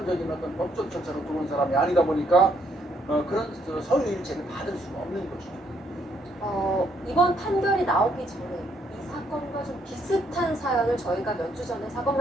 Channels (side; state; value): both; normal; correlation 0.71